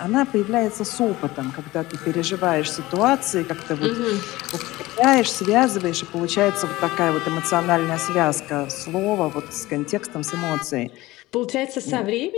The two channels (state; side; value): quieter; right; 18.6 dB